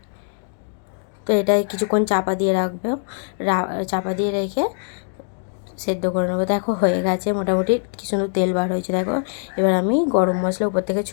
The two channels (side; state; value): right; silent; digital silence